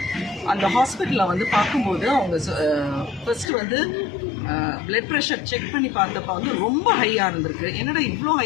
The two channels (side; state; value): right; drops out; at 3.5 s